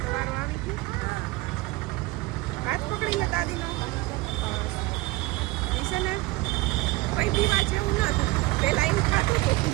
તો વારો આવી ગયો. હાથ પકડી લે દાદીનો. બસ એ છે ને કઈ પીવા જેવું નતું. પેલા એમ ખાતું હતું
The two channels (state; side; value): quieter; left; 20.5 dB